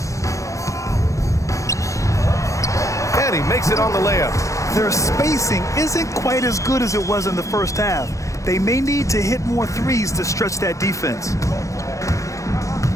And he makes it on the layup. Their spacing isn't quite as good as it was in the first half. They may need to hit more threes to stretch that defense.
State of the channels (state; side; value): late; right; 0.15 ms